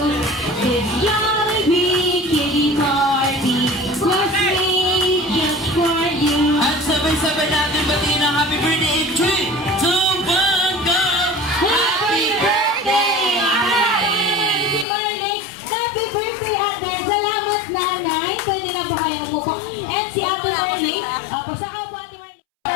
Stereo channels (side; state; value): right; drops out; at 14.9 s